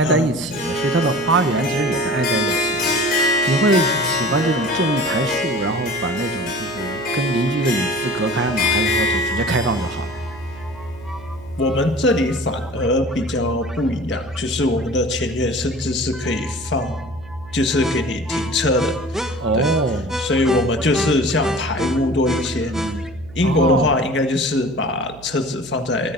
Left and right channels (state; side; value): noise; right; hum, 20 dB below the sound